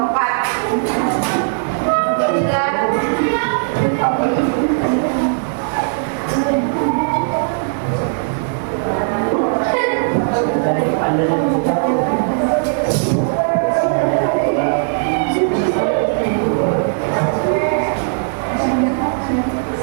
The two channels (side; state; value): left; silent; digital silence